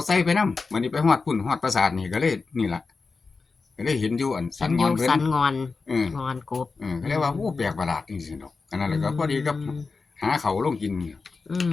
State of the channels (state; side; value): quieter; right; 4.3 dB